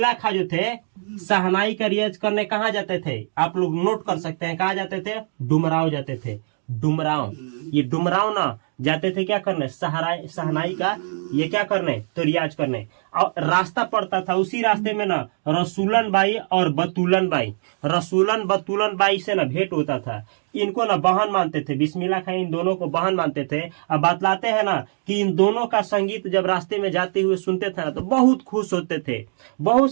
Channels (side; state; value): left; silent; digital silence